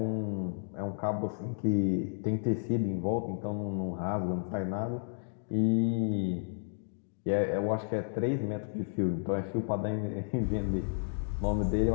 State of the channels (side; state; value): right; silent; digital silence